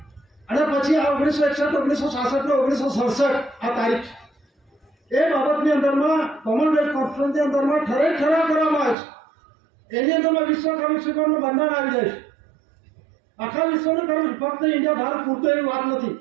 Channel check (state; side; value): drops out; left; at 9.0 s